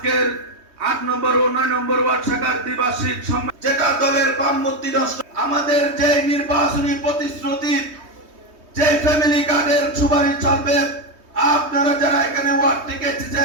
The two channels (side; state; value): left; late; 3.2 ms